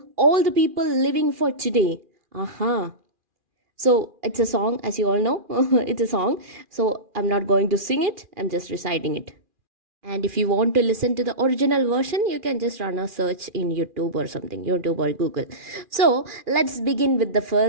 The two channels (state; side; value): late; left; 2.4 ms